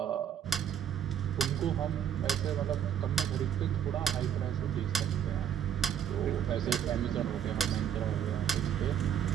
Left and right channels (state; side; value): quieter; left; 9.0 dB